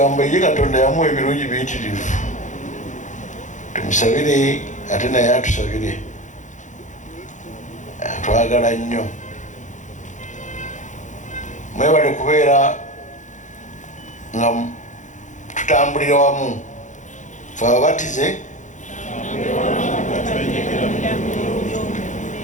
ye Katonda yamuwa ebirungi biyitirivu tumusabire ate naye atusabire atwagala nnyo mwebale kubeera nga tutambulira wamu fe ababatize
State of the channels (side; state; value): right; late; 0.36 ms